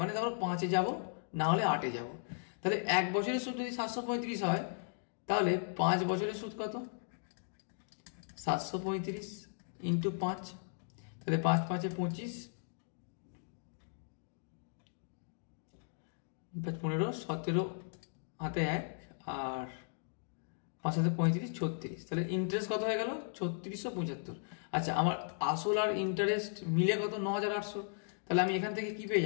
মানে ধরো 5-এ যাবো, না হলে 8-এ যাবো। তাহলে 1 বছরের সুদ যদি 735 হয়, তাহলে 5 বছরের সুদ কত? 735 ইন্টু 5, তাহলে 5 5-এ 25, 15, 17 হাতে 1, আর 5 হাতে 35, 36। তাহলে ইন্টারেস্ট কত হয়ে গেল? 3675। আচ্ছা, আমার আসল আর ইন্টারেস্ট মিলে কত? 9800। তাহলে আমি এখান থেকে কি পেয়ে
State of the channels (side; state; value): right; silent; digital silence